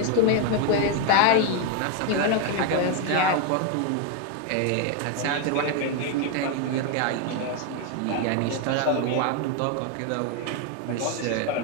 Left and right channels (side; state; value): both; different; correlation 0.01